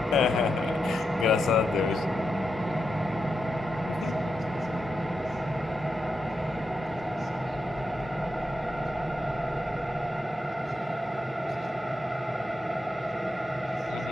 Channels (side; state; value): both; normal; correlation 0.86